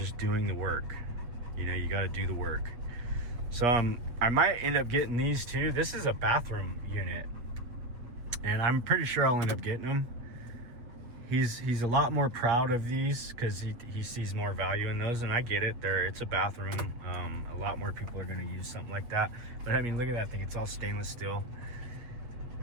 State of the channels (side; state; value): left; late; 8.1 ms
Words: doing the work. You know, you got to do the work. So I might end up getting these too. This is a bathroom unit, and I'm pretty sure I'll end up getting them. He's a lot more proud of these because he sees more value in those, and I get it. It's a bathroom. A lot more people are going to use something like that. But I mean, look at that thing. It's all stainless steel,